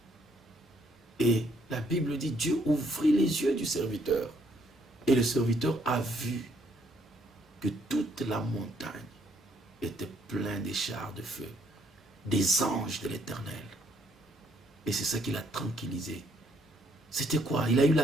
Et la Bible dit, Dieu ouvrit les yeux du serviteur. Et le serviteur a vu que toute la montagne était pleine des chars de feu, des anges de l'Éternel. Et c'est ça qui l'a tranquillisé. C'était quoi? Il a eu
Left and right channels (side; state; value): both; normal; correlation 0.69